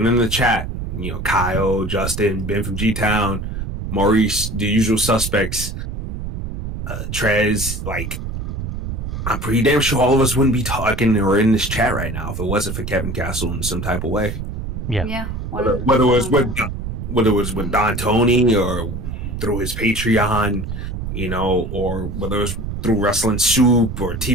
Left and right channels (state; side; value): noise; right; rumble, 5 dB below the sound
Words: in the chat, Kyle, Justin, Ben from G-Town, Maurice, the usual suspects, Trez, like, I'm pretty damn sure all of us wouldn't be talking or in this chat right now if it wasn't for Kevin Castle in some type of way. Yeah. Whether it was with Don Tony or through his Patreon, or whether it was through Wrestling Soup or